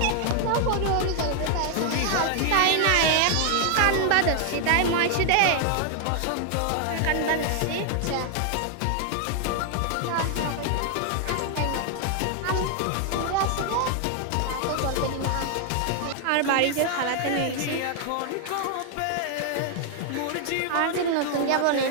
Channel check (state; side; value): different; both; correlation 0.00